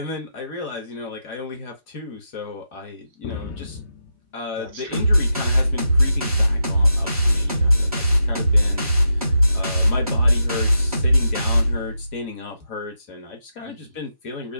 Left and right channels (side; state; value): both; inverted; correlation -0.87